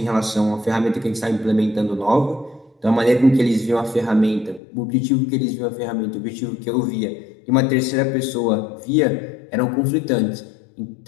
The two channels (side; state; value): right; drops out; at 4.6 s